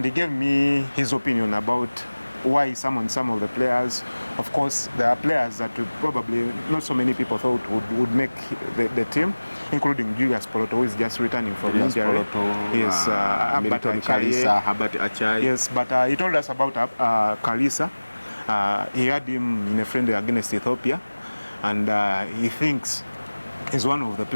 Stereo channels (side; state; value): both; inverted; correlation -1.00